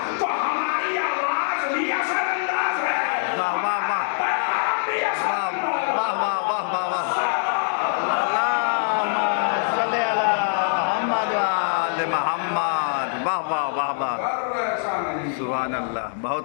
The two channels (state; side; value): silent; right; digital silence